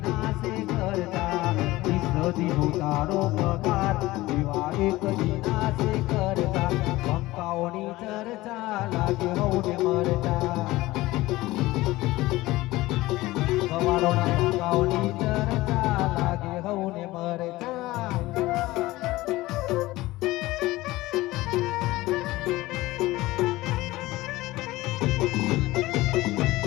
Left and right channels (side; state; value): right; quieter; 18.6 dB